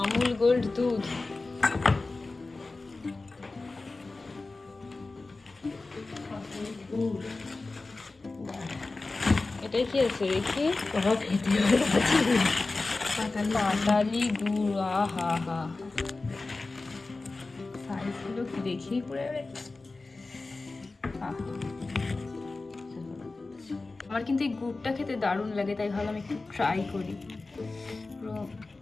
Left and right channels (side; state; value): right; quieter; 3.5 dB